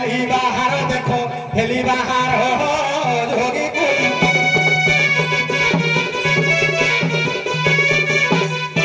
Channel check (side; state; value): both; identical; correlation 1.00